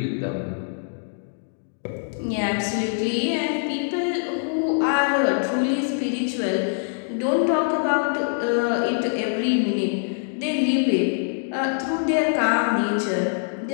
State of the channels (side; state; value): right; silent; digital silence